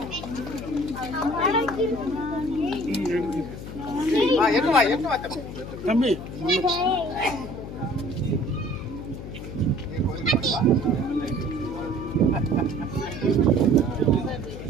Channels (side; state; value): left; noise; hum, 10 dB below the sound